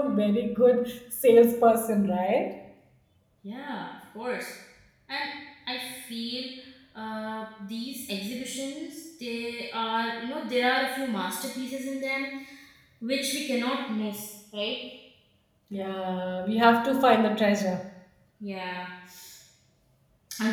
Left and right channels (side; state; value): both; identical; correlation 1.00